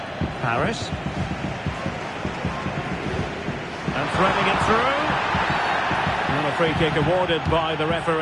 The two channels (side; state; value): both; identical; correlation 1.00